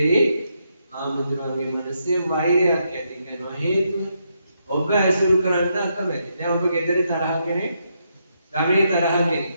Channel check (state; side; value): inverted; both; correlation -0.79